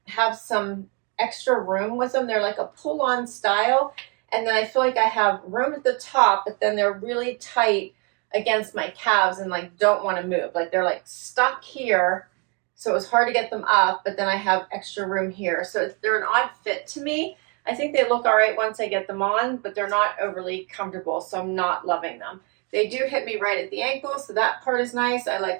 have some extra room with them. They're like a pull-on style. And then I feel like I have room at the top, but then they're really tight against my calves and like don't want to move. Like they're like stuck here. So it was hard to get them up, but then I have extra room here. So they're an odd fit to me. I think they look all right once I get them on, but they're not overly comfortable. So I'm not loving them. They do hit me right at the ankle, so that part is nice. I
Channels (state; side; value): quieter; left; 34.2 dB